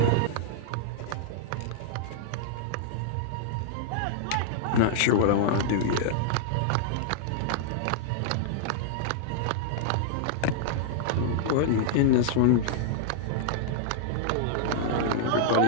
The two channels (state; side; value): different; both; correlation -0.01